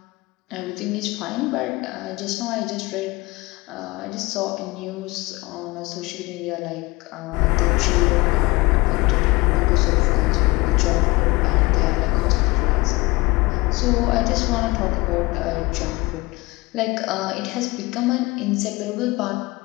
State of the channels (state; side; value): quieter; right; 22.9 dB